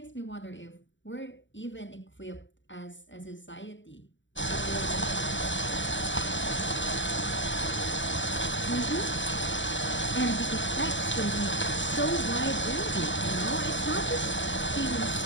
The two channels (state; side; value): late; right; 0.54 ms